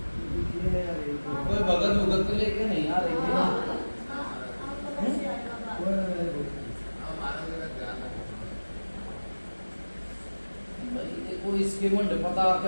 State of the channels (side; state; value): both; inverted; correlation -1.00